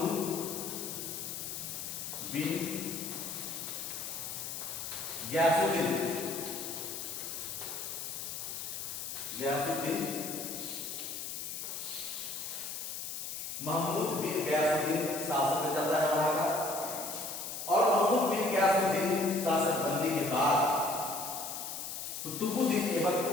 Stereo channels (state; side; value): noise; left; hiss, 6 dB below the sound